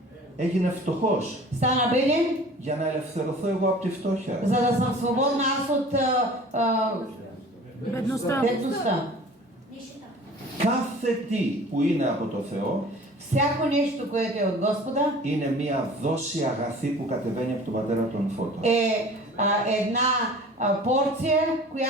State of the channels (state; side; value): normal; both; correlation 0.45